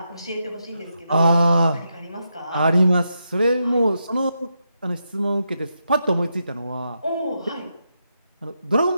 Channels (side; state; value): both; inverted; correlation -0.84